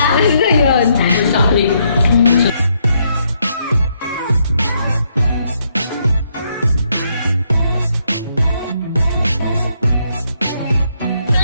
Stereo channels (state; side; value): inverted; both; correlation -0.74